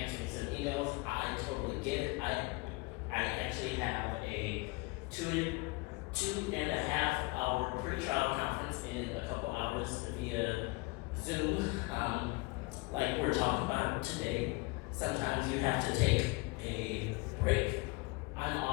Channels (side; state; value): right; quieter; 24.9 dB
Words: some emails. I totally get it. I actually have a 2.5 hour pre-trial conference in a couple hours via Zoom, like we're talking about today. Sometimes you have to take a break. I'm